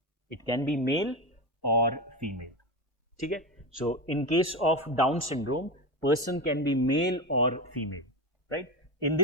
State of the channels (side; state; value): both; normal; correlation 0.20